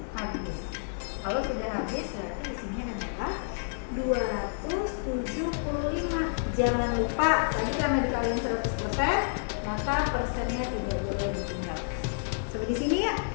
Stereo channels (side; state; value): right; silent; digital silence